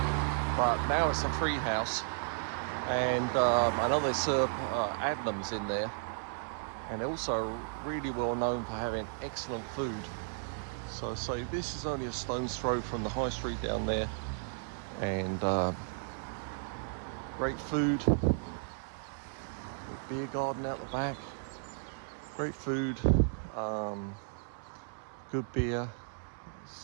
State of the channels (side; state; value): left; silent; 55 dB below the other